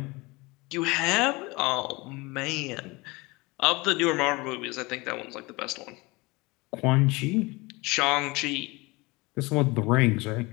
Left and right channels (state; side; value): quieter; right; 24.1 dB